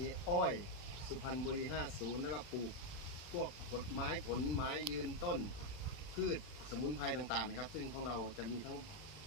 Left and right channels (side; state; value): right; late; 40 ms